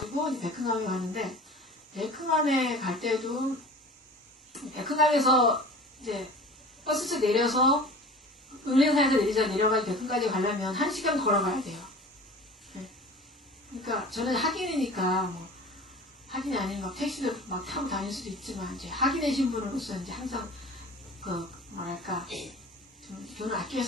백흥암에 가는데 백흥암에 갈 때도 백흥암에서 이제 버스에서 내려서 은행사에서 내려가지고 백흥까지 가려면 1시간 걸어가야 돼요. 네. 그러니까 저는 학인이니까 뭐 학인이 아닌 막 택시도 막 타고 다닐 수도 있지만 이제 학인의 신분으로서 이제 항상 그 뭐랄까 좀 돈을 아껴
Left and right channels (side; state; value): both; normal; correlation 0.40